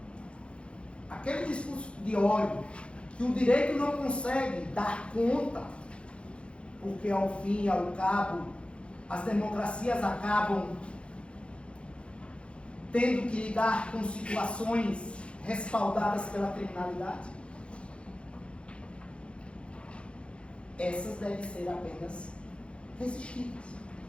Aquele discurso de ódio que o direito não consegue dar conta, porque ao fim e ao cabo as democracias acabam tendo que lidar com situações respaldadas pela criminalidade, essas devem ser apenas resistidas.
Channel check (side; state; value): right; late; 0.058 ms